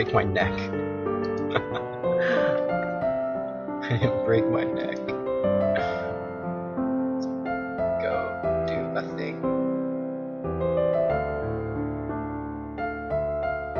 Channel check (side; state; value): both; identical; correlation 1.00